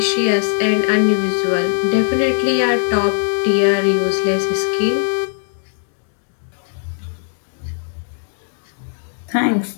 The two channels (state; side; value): silent; right; 67 dB below the other